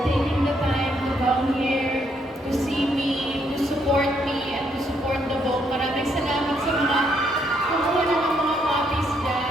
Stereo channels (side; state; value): both; normal; correlation 0.73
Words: taking the time to come here, to see me, to support me, and to support the book. Maraming salamat sa mga kumuha na ng mga copies